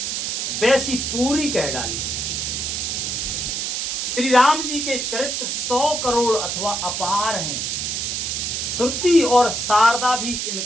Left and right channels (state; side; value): noise; right; hiss, 1 dB below the sound